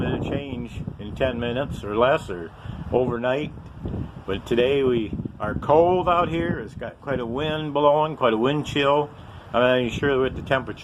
It'll change in 10 minutes or less or overnight. But today we are cold out here. It's got quite a wind blowing, quite a wind chill. I'm not even sure what the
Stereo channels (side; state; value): both; identical; correlation 1.00